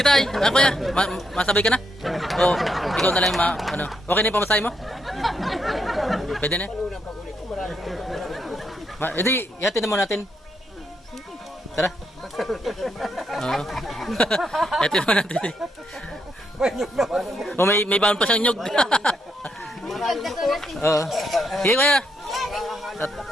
ako ya. Masabay ka na? O, ikaw na lang ano. Okay na yung pamasahe mo? Pwede na? Hindi, ihatid na muna natin. Tara. Oo. Ihatid na muna natin. O, may baon pa siyang nyog. Oo. Sige kuya.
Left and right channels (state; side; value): normal; both; correlation 0.78